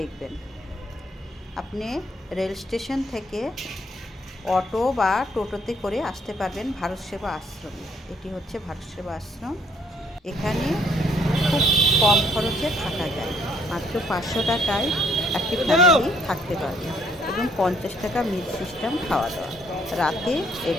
আপনি রেল স্টেশন থেকে অটো বা টোটোতে করে আসতে পারবেন ভারত সেবা আশ্রমে। এটি হচ্ছে ভারত সেবা আশ্রম। এখানে খুব কম খরচে থাকা যায়, মাত্র 500 টাকায় একটি ফ্যামিলি থাকতে পারবে এবং 50 টাকা মিল সিস্টেম খাওয়া দাওয়া রাতে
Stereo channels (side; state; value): both; normal; correlation 0.66